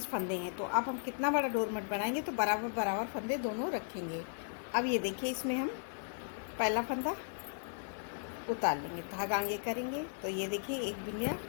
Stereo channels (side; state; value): right; silent; digital silence